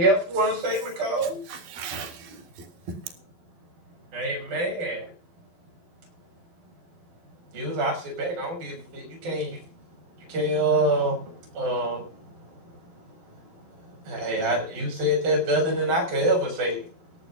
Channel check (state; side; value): late; left; 12 ms